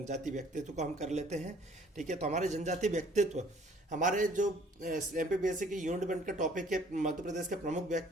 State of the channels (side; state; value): both; normal; correlation 0.57